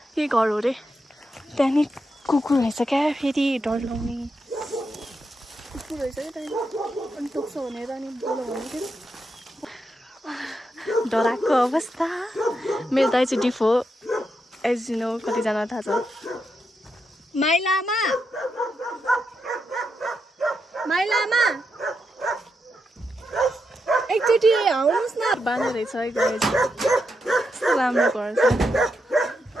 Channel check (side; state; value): both; normal; correlation 0.84